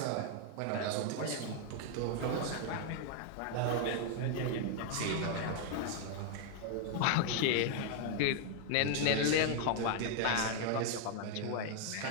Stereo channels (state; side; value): different; both; correlation 0.00